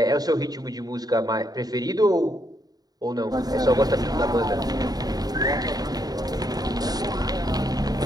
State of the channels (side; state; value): left; late; 0.19 ms